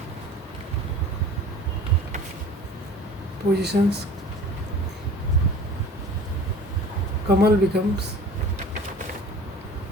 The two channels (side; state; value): both; normal; correlation 0.43